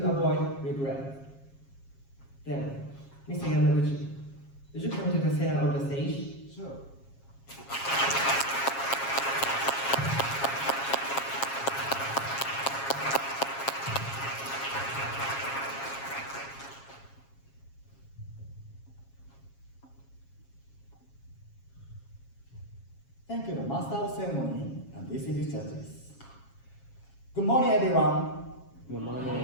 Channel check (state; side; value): late; right; 7.3 ms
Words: Avoid Regret. Then, Mr. Yamaguchi, would you come to the center of the stage? Sure. Thank you, the Master of Ceremony and distinguished judges. Good morning, everyone. Good